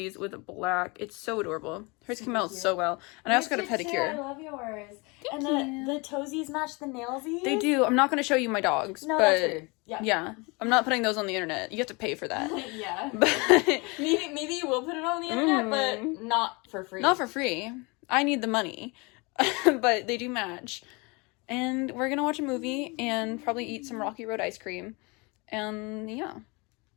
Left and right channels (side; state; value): right; quieter; 28.0 dB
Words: with black. It's so adorable. Hers came out so well. And I also got a pedicure. I love yours. Thank and the toesies match the nailsies. They do. I'm not going to show you my dogs. No, but that's weird. Yeah. I'm not putting those on the internet. You have to pay for that. Yeah. But Maybe you will put it on the internet, but not for free. not for free. I need the money. But they do match. And we're going to watch a movie and probably eat some Rocky Road ice cream. And yeah.